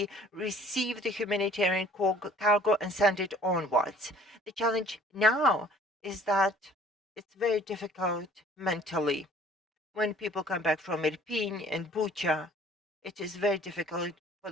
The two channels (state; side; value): normal; both; correlation 0.55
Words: receive the humanitarian cargo and send it onwards. The challenge now is that it's very difficult mentally. When people come back from Irpin and Bucha, it is very difficult for